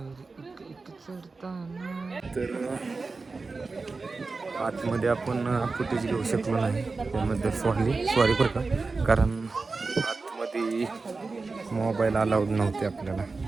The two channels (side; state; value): left; quieter; 4.0 dB